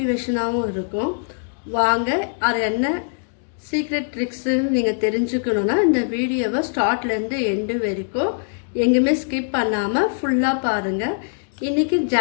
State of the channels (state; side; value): silent; right; digital silence